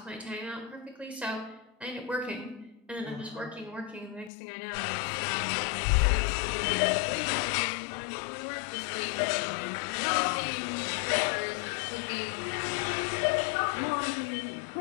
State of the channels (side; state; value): right; drops out; at 4.3 s